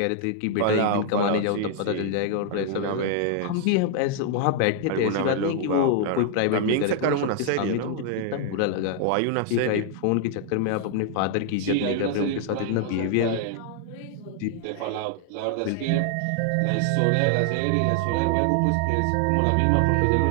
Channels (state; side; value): different; both; correlation 0.00